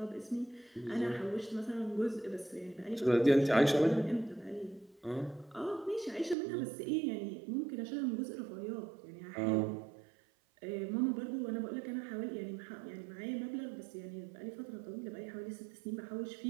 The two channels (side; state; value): left; drops out; at 6.4 s